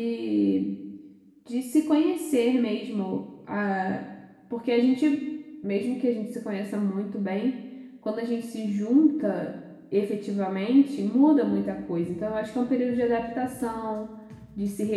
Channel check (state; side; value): identical; both; correlation 1.00